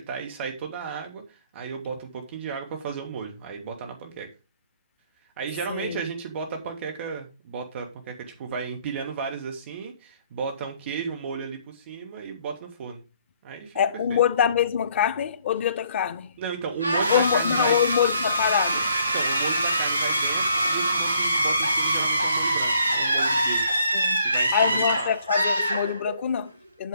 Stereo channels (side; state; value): both; inverted; correlation -0.66